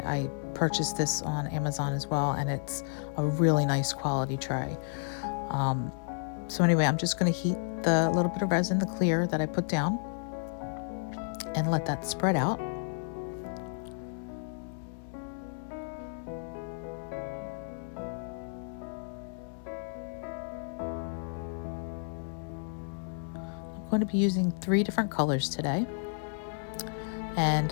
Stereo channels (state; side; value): silent; right; digital silence